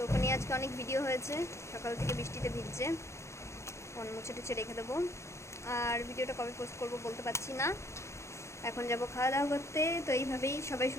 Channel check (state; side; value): late; right; 0.14 ms